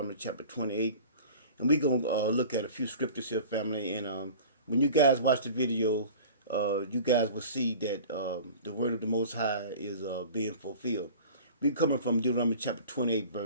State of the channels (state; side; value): inverted; both; correlation -0.40